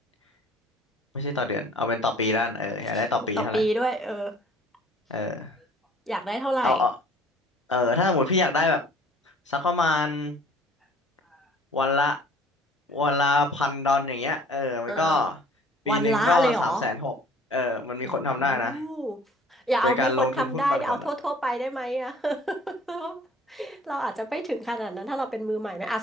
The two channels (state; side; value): normal; both; correlation 0.52